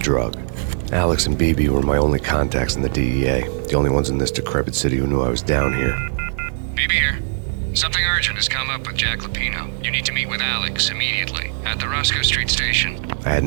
Alex and BB were my only contacts in the DEA, the only ones in this decrepit city who knew I was down here. BB here. Something urgent has come up with Jack Lupino. You need to meet with Alex immediately at the Roscoe Street station. I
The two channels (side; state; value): left; silent; digital silence